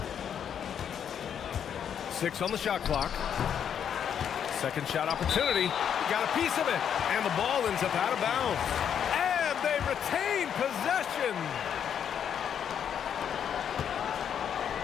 Six on the shot clock. Second shot opportunity. Got a piece of it. And the ball ends up out of bounds. And they retain possession.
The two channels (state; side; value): quieter; right; 8.5 dB